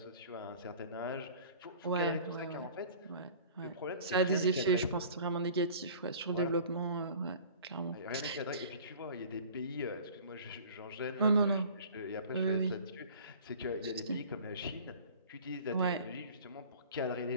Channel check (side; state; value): both; inverted; correlation -0.45